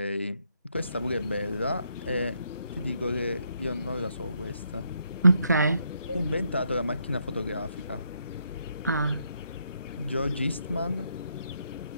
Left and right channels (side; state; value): both; inverted; correlation -0.76